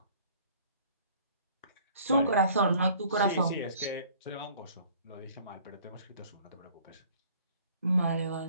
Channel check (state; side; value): inverted; both; correlation -0.54